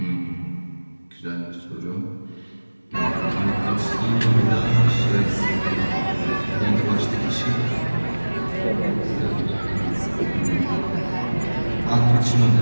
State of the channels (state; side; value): inverted; both; correlation -1.00